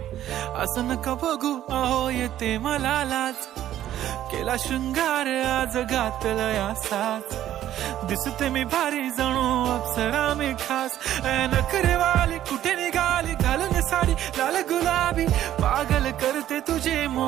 असं नका बघू अहो येते मला लाज. केला शृंगार आज घातला असाच, दिसते मी भारी जणू अप्सरा मी खास. नखरेवाली कुठे निघाली घालून साडी लाल गुलाबी, पागल करते तुझे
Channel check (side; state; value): left; quieter; 12.2 dB